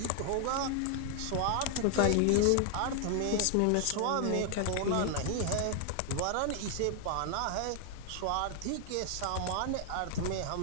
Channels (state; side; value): different; both; correlation 0.00